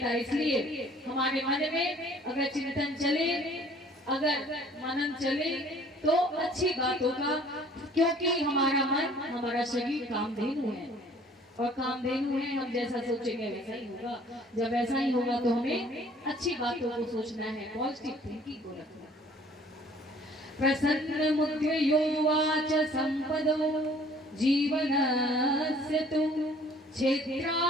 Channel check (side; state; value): both; normal; correlation 0.55